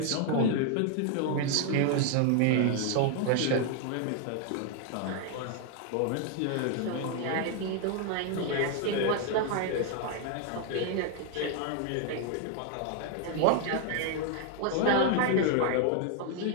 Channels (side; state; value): both; different; correlation 0.00